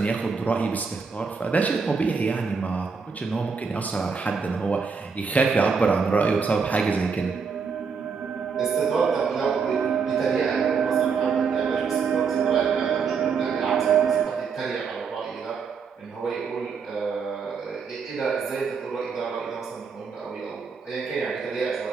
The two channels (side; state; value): left; quieter; 5.5 dB